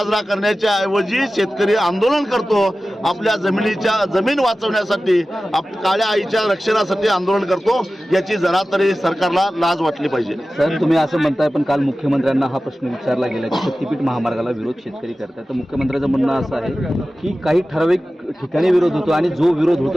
करण्याच्या ऐवजी शेतकरी आंदोलन करतो. आपल्या जमीन वाचवण्यासाठी, काळ्या आईच्या रक्षणासाठी आंदोलन करतो. याची जरा तरी सरकारला लाज वाटली पाहिजे. सर, तुम्ही असं म्हणताय, पण काल मुख्यमंत्र्यांना हा प्रश्न विचारला गेला की शक्तीपीठ महामार्गाला विरोध शेतकरी करतात. तर मुख्यमंत्र्यांचं म्हणणं असं आहे की काही ठराविक ठिकाणी विरोध होतो आणि जो विरोध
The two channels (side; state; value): both; normal; correlation 0.95